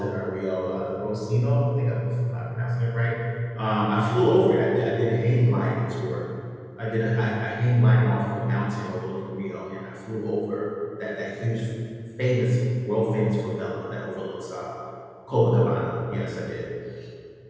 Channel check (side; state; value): both; identical; correlation 1.00